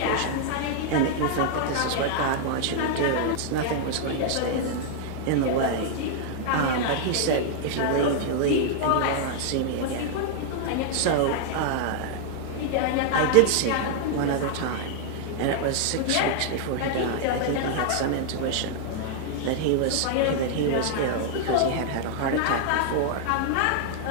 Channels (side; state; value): both; different; correlation -0.01